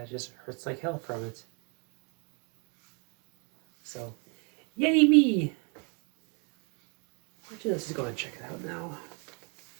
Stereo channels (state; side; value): quieter; left; 34.9 dB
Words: just hurts like hell from it. So, yay me! Actually, let's just go ahead and check it out now.